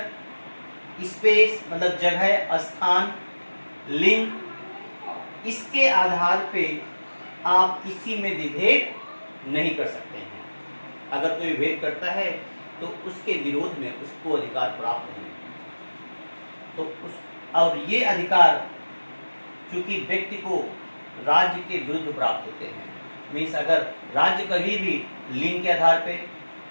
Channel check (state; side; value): inverted; both; correlation -1.00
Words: स्पेस मतलब जगह, स्थान, लिंग, इसके आधार पे आप किसी में विभेद नहीं कर सकते हैं। अगर कोई विभेद करता है तो उसके विरोध में उसको अधिकार प्राप्त नहीं। तो उस और ये अधिकार चूंकि व्यक्ति को राज्य के विरुद्ध प्राप्त होते हैं, मीन्स अगर राज्य कभी भी लिंग के आधार पे,